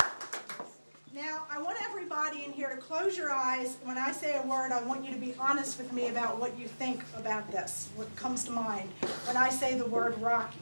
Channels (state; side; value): inverted; both; correlation -1.00